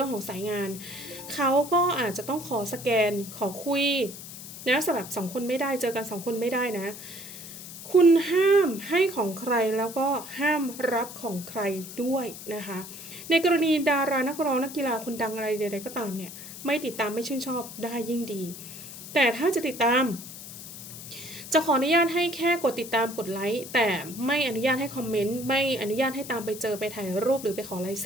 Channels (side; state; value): left; noise; hiss, 12 dB below the sound